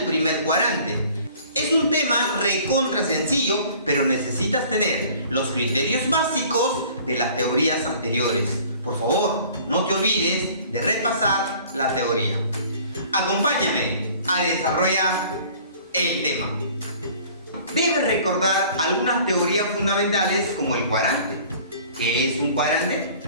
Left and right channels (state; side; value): inverted; both; correlation -0.51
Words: primer cuadrante. Es un tema recontra sencillo, pero necesitas tener los criterios básicos de las teorías anteriores. Por favor, no te olvides de repasar la teoría. Acompáñame a desarrollar el tema. Debes recordar algunas teorías fundamentales como el cuadrante. ¿Qué es un cuadrante?